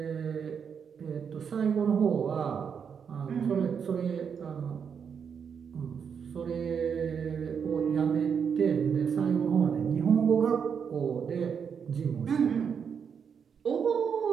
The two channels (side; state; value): left; quieter; 6.9 dB